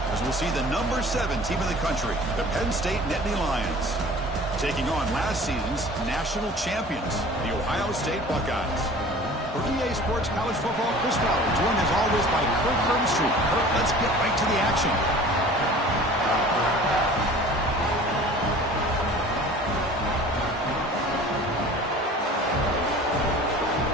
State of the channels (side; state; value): both; normal; correlation 0.44